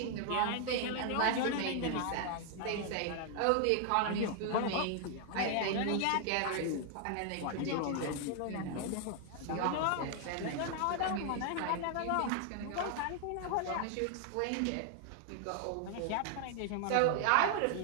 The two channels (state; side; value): different; both; correlation 0.00